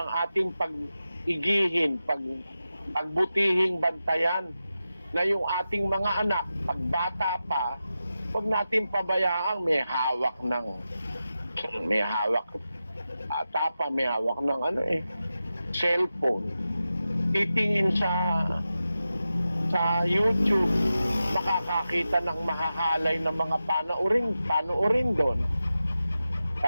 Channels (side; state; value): both; inverted; correlation -0.92